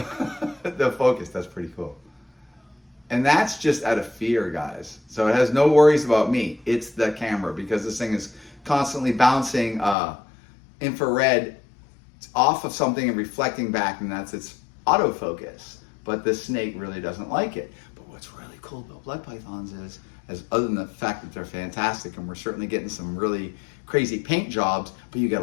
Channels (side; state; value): right; drops out; at 10.0 s